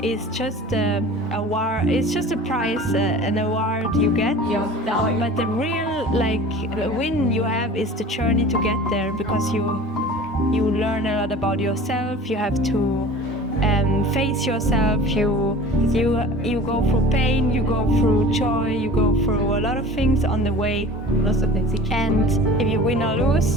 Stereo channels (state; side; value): normal; both; correlation 0.40